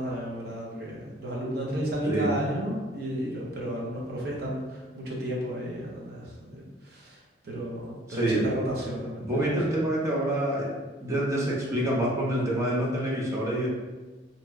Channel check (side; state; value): both; normal; correlation 0.55